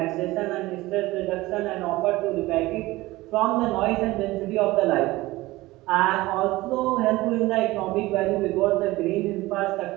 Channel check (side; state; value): left; quieter; 19.2 dB